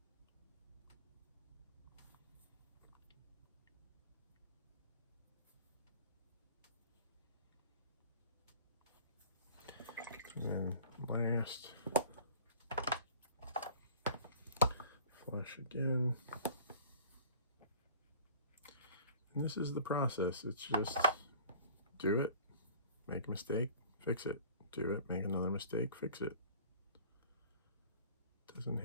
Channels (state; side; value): inverted; both; correlation -0.47